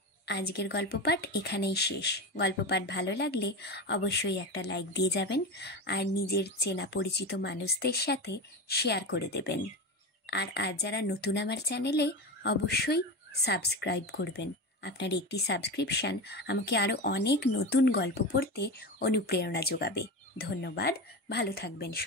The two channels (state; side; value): normal; both; correlation 0.22